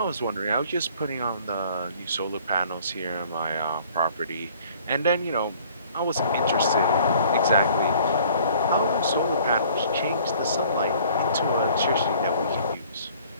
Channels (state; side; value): inverted; both; correlation -0.54